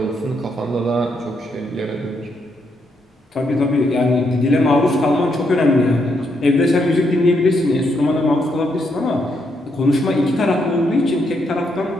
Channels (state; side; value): normal; both; correlation 0.78